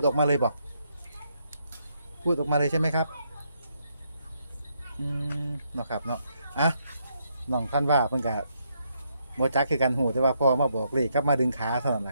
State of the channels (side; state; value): both; inverted; correlation -0.76